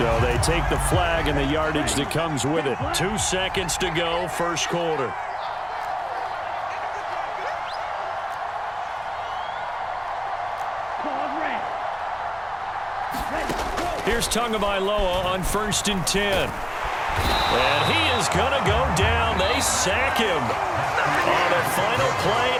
they take the flag and the yardage that comes with it. 2 seconds to go, first quarter. Here's Tagovailoa on first and 10. And he is going to go down. They sack him on the final play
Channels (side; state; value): both; identical; correlation 1.00